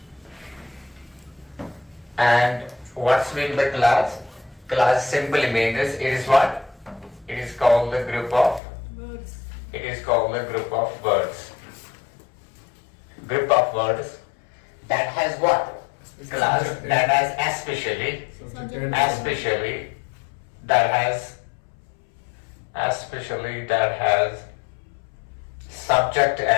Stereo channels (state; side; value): drops out; right; at 8.6 s